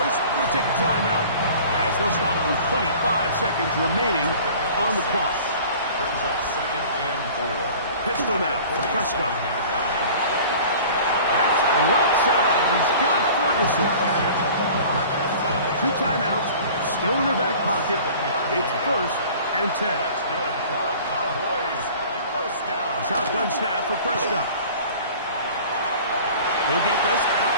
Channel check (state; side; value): inverted; both; correlation -0.45